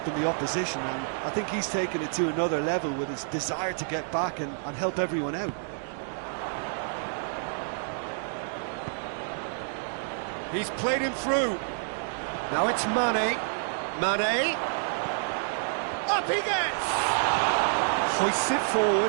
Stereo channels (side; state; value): left; silent; digital silence